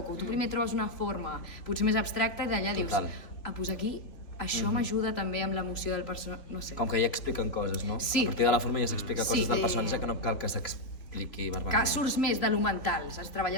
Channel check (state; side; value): late; right; 3.1 ms